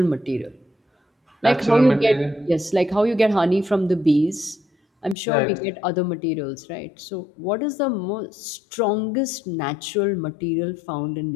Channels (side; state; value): right; drops out; at 5.2 s